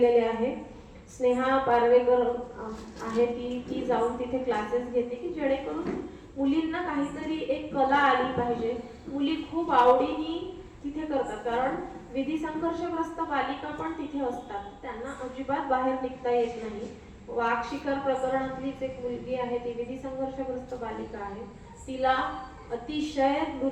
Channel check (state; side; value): identical; both; correlation 1.00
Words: आहे. स्नेहा पारवेकर आहे ती जाऊन तिथे क्लासेस घेते की जेणेकरून मुलींना काहीतरी एक कला आली पाहिजे. मुली खूप आवडीने तिथे करतात, कारण विधी संघर्षग्रस्त बालिका पण तिथे असतात, त्यांना अजिबात बाहेर निघता येत नाही. वाघ शिकार प्रकरणातलीच एक मुलगी आहे, ती विधी संघर्षग्रस्त बालिका आहे, तिला अतिशय